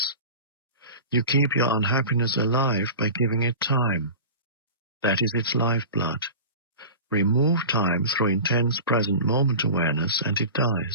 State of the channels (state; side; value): inverted; both; correlation -0.34